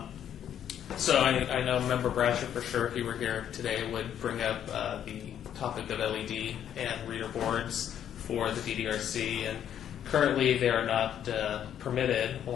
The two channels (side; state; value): right; quieter; 9.8 dB